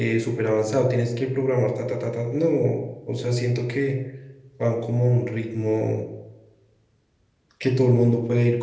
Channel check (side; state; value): both; identical; correlation 1.00